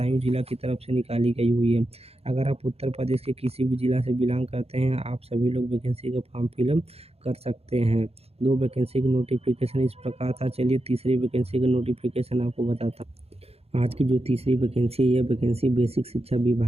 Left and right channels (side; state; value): left; late; 0.29 ms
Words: जिला की तरफ से निकाली गई हुई है। अगर आप उत्तर प्रदेश के किसी भी जिला से बिलोंग करते हैं, आप सभी लोग वैकेंसी का फॉर्म फिलअप कर सकते हैं। 2 वैकेंसी का नोटिफिकेशन इस प्रकार था। चलिए तीसरी वैकेंसी का नोटिफिकेशन आपको बताता हूँ। आज की जो तीसरी वैकेंसी है, यह वैकेंसी बेसिक शिक्षा